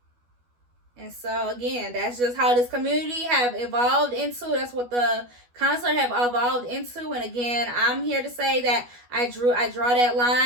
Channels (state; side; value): late; left; 12 ms